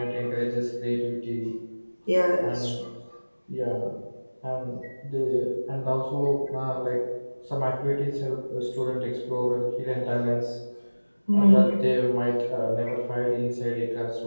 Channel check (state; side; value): inverted; both; correlation -1.00